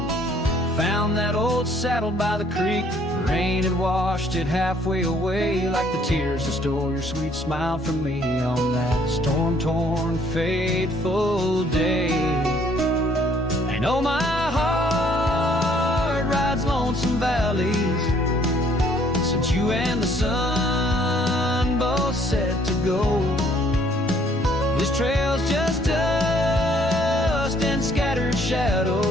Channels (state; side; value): normal; both; correlation 0.62